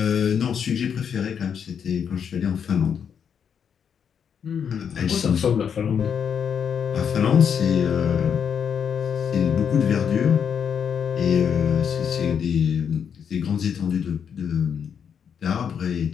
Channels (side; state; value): right; quieter; 7.5 dB